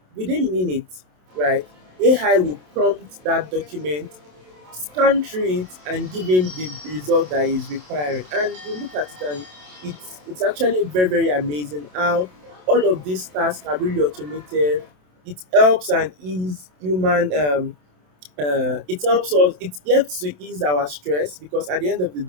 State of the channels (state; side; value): late; left; 27 ms